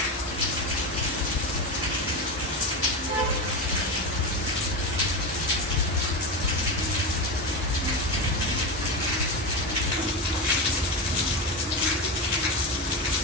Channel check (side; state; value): both; normal; correlation 0.17